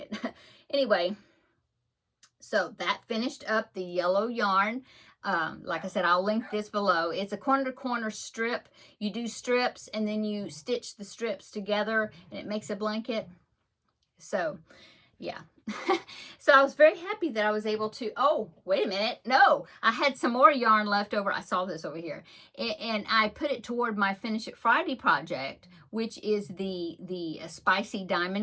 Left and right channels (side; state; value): both; identical; correlation 1.00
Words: Anyway, so that finished up the yellow yarn. Like I said, I'll link this below. It's a corner-to-corner strip. You do strips, and then you stitch the strips together, and it makes a blanket. So, yeah. So I was very happy that I was able to, oh, wait a minute. No, I had some more yarn left over. I saw this over here. And I put it toward my Finish It Friday project, which is the spicy